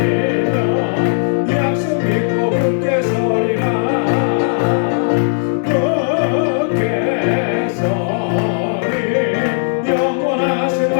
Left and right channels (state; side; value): silent; right; digital silence